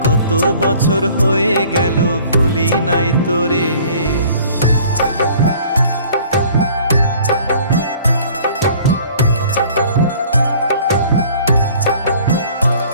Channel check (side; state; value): both; inverted; correlation -0.52